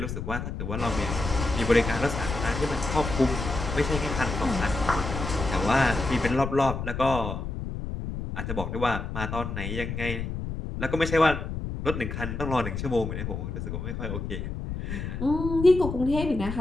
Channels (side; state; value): left; noise; rumble, 5 dB below the sound